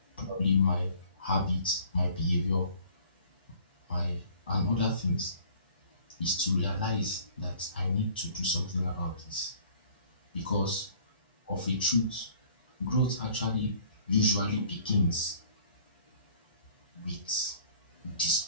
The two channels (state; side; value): inverted; both; correlation -0.54